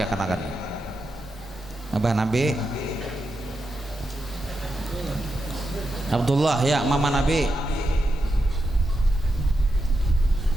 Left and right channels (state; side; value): normal; both; correlation 0.86